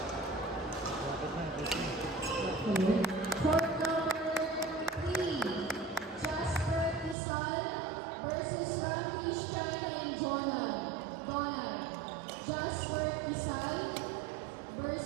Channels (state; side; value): drops out; left; at 7.2 s